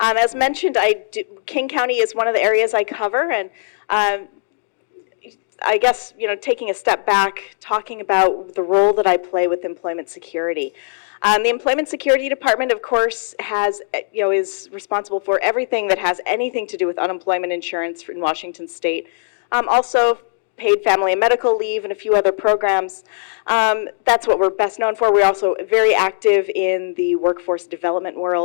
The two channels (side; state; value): right; silent; 66 dB below the other